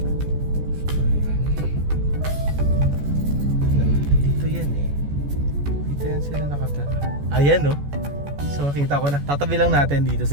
So, ayan. Dito yan eh. Dito yan sila nakatara. Ayan no. So makita ko na. Tatabi lang natin dito sa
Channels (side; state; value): left; late; 14 ms